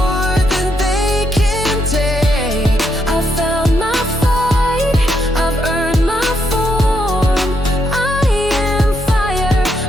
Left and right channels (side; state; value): both; normal; correlation 0.77